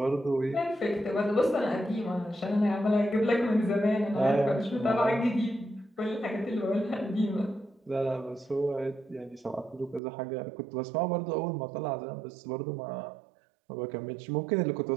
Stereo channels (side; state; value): left; drops out; at 10.0 s